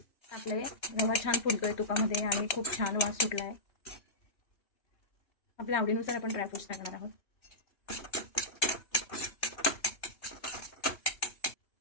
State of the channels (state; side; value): late; right; 3.2 ms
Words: टाकलंय. रवा छान फुलतोय तुपामध्ये आणि खूप छान वास सुटलाय. आपल्या आवडीनुसार आपण ड्रायफ्रुट्स टाकणार आहोत.